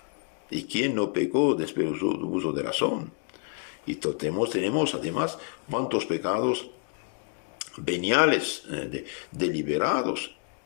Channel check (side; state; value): right; quieter; 39.9 dB